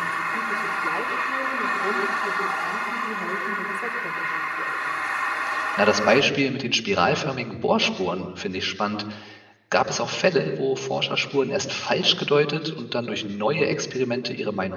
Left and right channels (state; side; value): identical; both; correlation 1.00